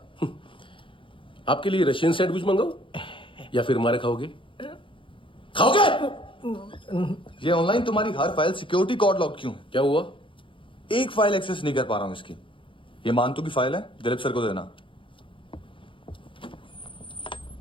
आपके लिए रशियन सैंडविच मंगाओ या फिर हमारे खाओगे? खाओगे? ये ऑनलाइन तुम्हारी हर फाइल सिक्योरिटी कोड लॉक क्यों? क्या हुआ? एक फाइल एक्सेस नहीं कर पा रहा हूं इसकी। ये मानतू की फाइल है, दिलीप सर को देना।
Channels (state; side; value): late; right; 0.25 ms